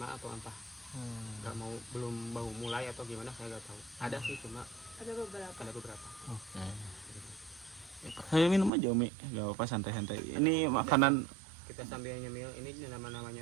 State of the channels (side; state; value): left; drops out; at 8.7 s